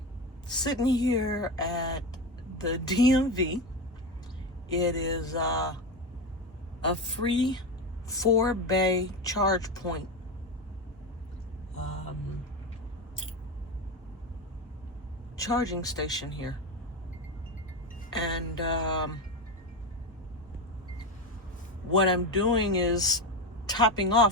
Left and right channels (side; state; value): both; normal; correlation 0.18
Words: Sitting here at the DMV. It is a free 4-bay charge point. Charging station here. And what I'm doing is topping